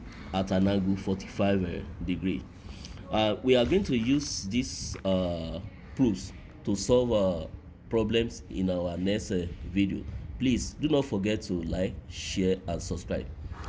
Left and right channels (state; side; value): identical; both; correlation 1.00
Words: at an angle 45 degree. We are going to use these proofs to solve problems in our next video. Please do not forget to like, share and subscribe.